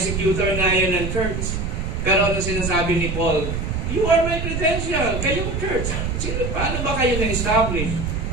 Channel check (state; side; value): noise; right; rumble, 3 dB below the sound